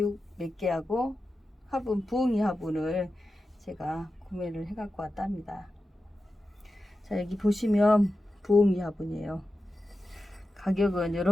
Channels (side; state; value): both; normal; correlation 0.92